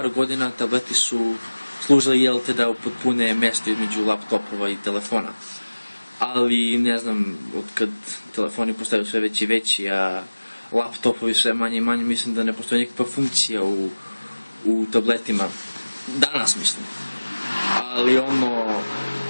godina tableti su služili da upotpune mesto između laptopova i telefona. Ali ne znam, otkad telefoni postaju sve veći i veći, a laptopovi sve manje i manje, mislim da ne postoji nikakva funkcija u tabletima. Danas mislim. Ali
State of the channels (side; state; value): both; inverted; correlation -1.00